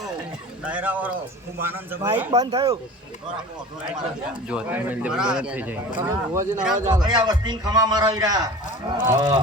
ડાયરાવાળો ખૂબ આનંદ છે માઈક બંધ થયું જો તમે બંધ થઈ જાય ચોકડિયા વસ્તી ખમા મારા વીરા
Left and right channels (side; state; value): both; normal; correlation 0.38